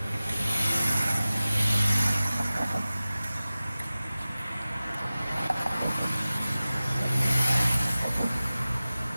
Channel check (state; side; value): inverted; both; correlation -0.97